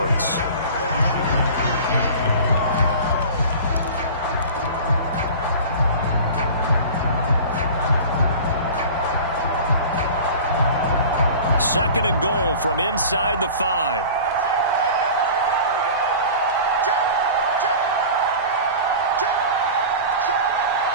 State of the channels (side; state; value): both; inverted; correlation -0.37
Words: Second and goal from inside the 5.